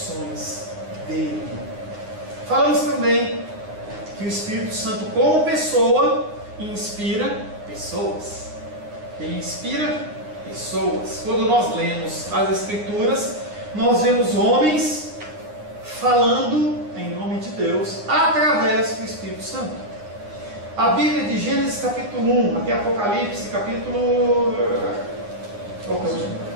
dele. Falamos também que o Espírito Santo, como pessoa, inspira pessoas. Ele inspira pessoas. Quando nós lemos as Escrituras, nós vemos homens falando em nome de Deus através do Espírito Santo. A Bíblia de Gênesis capítulo 1 até Apocalipse capítulo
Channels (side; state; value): left; late; 9.7 ms